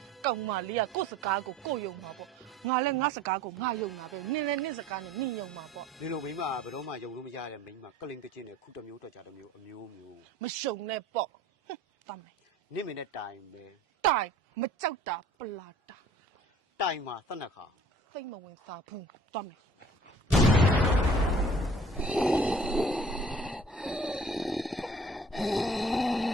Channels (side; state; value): both; normal; correlation 0.50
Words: ကောင်မလေးကကိုယ့်စကားကိုကိုယ်ယုံမှာပေါ့ငါလည်းငါစကားကိုငါယုံတာပဲနင်လည်းနင်စကားနဲ့နင်ယုံမှာပေါ့ ဒီလိုမိမဘယ်တော့မှယုံလို့မရတဲ့မိမကလင်ကချင်းနဲ့ခုတစ်မျိုးတော့ကြတစ်မျိုးအမျိုးမျိုး မရှုံနဲ့ပေါ့သွားမယ် နင့်မင်းနဲ့တိုင်ပဲ တိုင်မကြောက်တာပလာတာ တိုင်မှာသတ်နှက်ခါ စိတ်မဝင်စားဘူးသွားမယ်